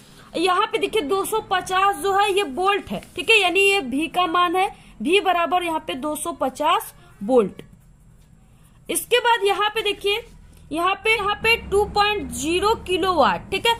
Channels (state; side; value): identical; both; correlation 1.00